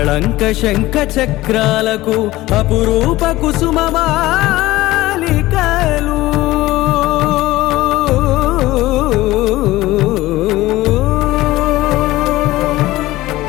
శంఖ చక్రాలకు అపురూప కుసుమమాలికలు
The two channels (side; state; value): right; quieter; 17.6 dB